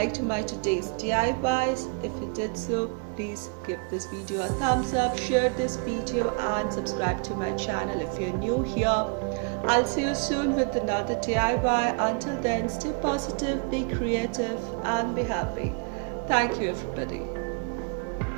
my today's DIYs. If you did so, please give this video a thumbs up, share this video, and subscribe to my channel if you're new here. I'll see you soon with another DIY. Until then, stay positive, be creative, and be happy. Thank you, everybody.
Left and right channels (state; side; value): quieter; left; 37.2 dB